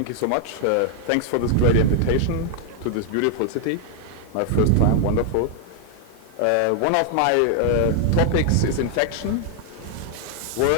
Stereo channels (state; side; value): different; both; correlation 0.00